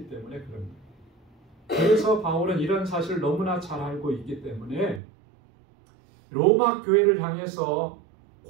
때문에 그런 거예요. 그래서 바울은 이런 사실을 너무나 잘 알고 있기 때문에 로마 교회를 향해서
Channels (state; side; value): drops out; left; at 5.0 s